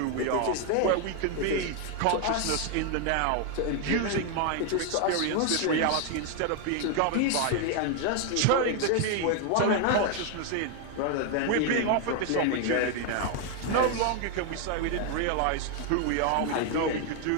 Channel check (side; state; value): both; different; correlation 0.01